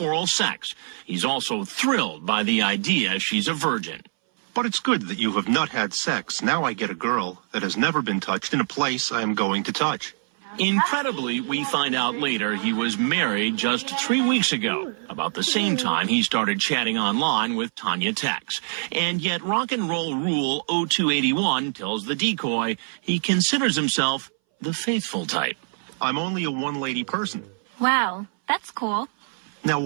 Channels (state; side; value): silent; left; 61 dB below the other